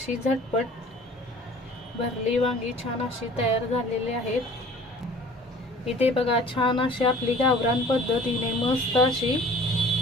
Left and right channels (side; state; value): both; normal; correlation 0.48